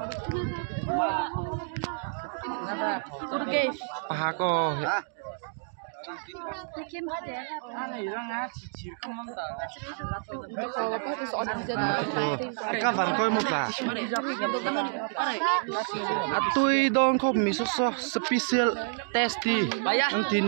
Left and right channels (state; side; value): silent; left; digital silence